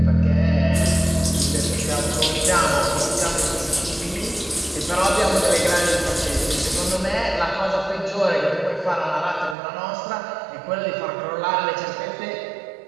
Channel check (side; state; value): left; drops out; at 9.6 s